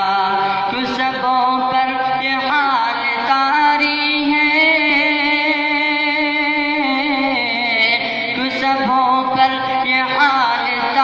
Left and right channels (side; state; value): both; identical; correlation 1.00